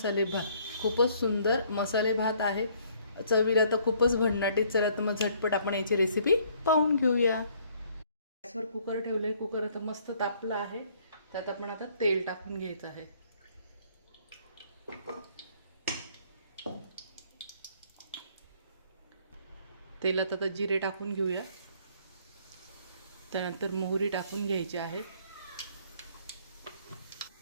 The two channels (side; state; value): both; inverted; correlation -0.62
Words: भात. खूपच सुंदर मसाले भात आहे. चवीला तर खूपच भन्नाटी. चला तर मग झटपट आपण याची रेसिपी पाहून घेऊया. गॅसवर कुकर ठेवले. कुकर आता मस्त तापला आहे. त्यात आपण आता तेल टाकून घ्यायचं आहे. तेलात आता जिरे टाकून घेऊया. त्यानंतर मोहरी टाकून घ्यायची आहे.